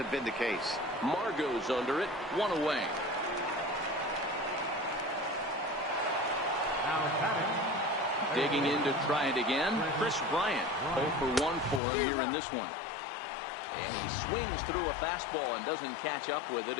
been the case. Margot's under it, 1 away. Digging in to try it again, Chris Bryant. 0 for 1 for him here in this one. And he swings through a fastball and doesn't catch up with it.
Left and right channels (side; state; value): right; drops out; at 11.8 s